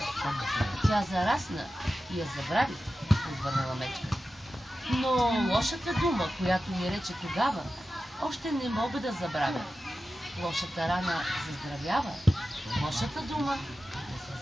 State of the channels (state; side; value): normal; both; correlation 0.93